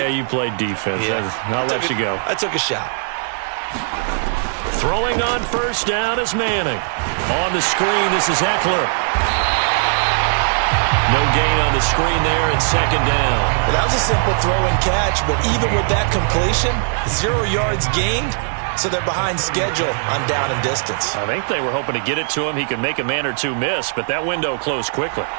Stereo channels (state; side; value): silent; left; 67 dB below the other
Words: you played defense. Yeah. I'll let you go. I took a shot. Throwing on first down is Manning. On the screen, this is Eckler. No gain on the screen there, and second down. Well, that was a simple throw and catch, but even with that completion, 0 yards gained, so they're behind schedule on down and distance. I think they were hoping to get it to him. He could make a man or two miss, but that window closed quickly.